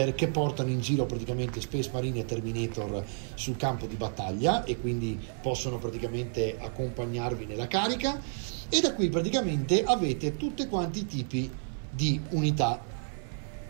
che portano in giro praticamente Space Marine e Terminator sul campo di battaglia, e quindi possono praticamente accompagnarvi nella carica. E da qui praticamente avete tutti quanti i tipi di unità.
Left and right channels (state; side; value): silent; left; 57 dB below the other